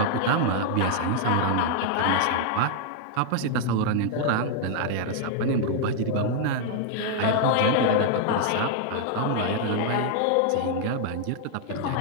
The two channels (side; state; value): both; different; correlation 0.00